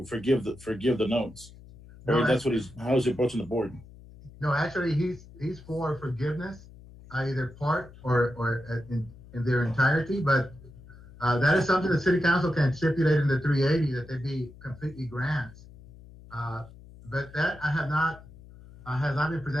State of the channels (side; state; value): left; noise; hum, 20 dB below the sound